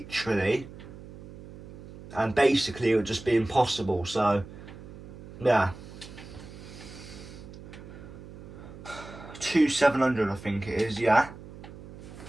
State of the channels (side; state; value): right; noise; hum, 15 dB below the sound